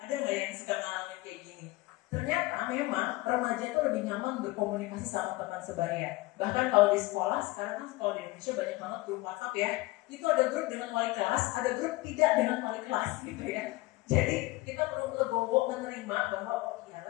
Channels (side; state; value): right; quieter; 20.5 dB